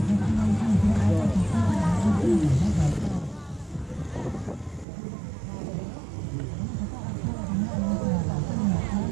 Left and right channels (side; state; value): left; drops out; at 4.9 s